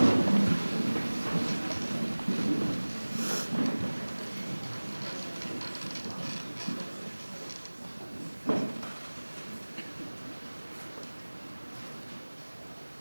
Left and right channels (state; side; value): inverted; both; correlation -1.00